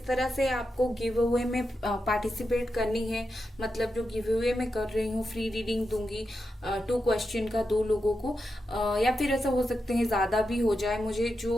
तरह से आपको गिव अवे में पार्टिसिपेट करनी है, मतलब जो गिव अवे में कर रही हूँ, फ्री रीडिंग दूंगी 2 क्वेश्चन का 2 लोगों को, या फिर ऐसा हो सकते हैं ज्यादा भी हो जाए। मुझे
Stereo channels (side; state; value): both; normal; correlation 0.88